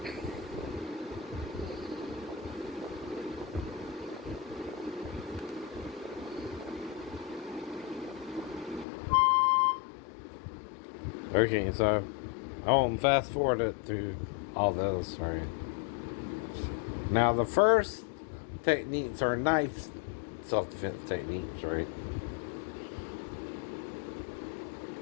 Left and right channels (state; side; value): drops out; right; at 8.8 s